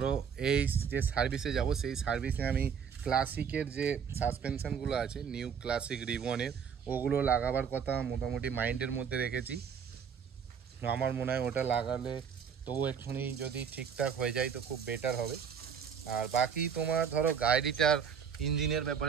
এই যে সার্ভিসে যাব সেই সার্ভিসে আমি ক্লাসিকের যে সাসপেনশনগুলো আছে নিউ ক্লাসিক রিবনের ওগুলো লাগাবার কথা মোটামুটি মাইন্ডের মধ্যে রেখেছি। আমার মনে হয় ওটা লাগালে তবু এক্ষুনি যদি ঠিকঠাক হয়ে যায় তো খুব বেটার হবে। আর বাকি তোমার ধরো গাড়িটার ইঞ্জিনের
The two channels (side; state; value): left; quieter; 7.1 dB